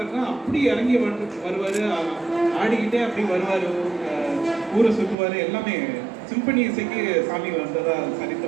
அப்படி இறங்கி வருவாரு, ஆடிக்கிட்டே அப்படி வருவாரு, ஊரை சுற்றுவாரு. எல்லாமே சிம்பனி இசைக்கு சாமி வந்ததா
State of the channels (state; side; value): drops out; left; at 5.2 s